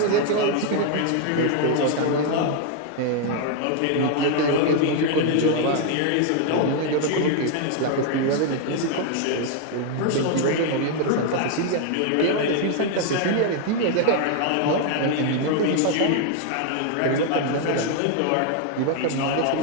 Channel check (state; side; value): different; both; correlation 0.00